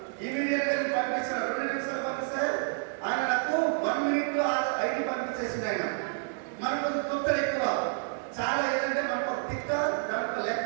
ఇమీడియట్ గా పంపించారు. 2 నిమిషాలు పంపిస్తే ఆయన నాకు 1 minute లో ఐడి పంపించేసింది. ఆయన మనకు తుత్తలు ఎక్కువ చాలా, ఏదంటే మనకు ఒక తిక్క దాంట్లో లెక్క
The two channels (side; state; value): left; silent; digital silence